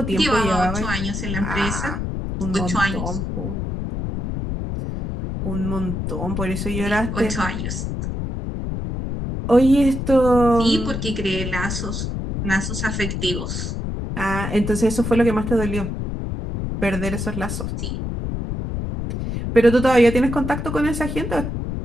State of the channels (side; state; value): left; noise; rumble, 4 dB below the sound